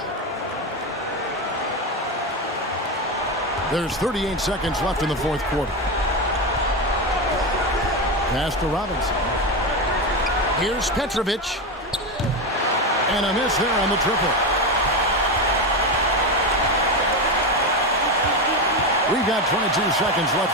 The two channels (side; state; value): both; normal; correlation 0.15